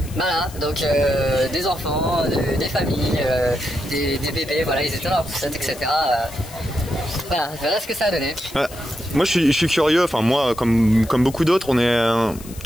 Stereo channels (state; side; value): noise; left; hiss, 18 dB below the sound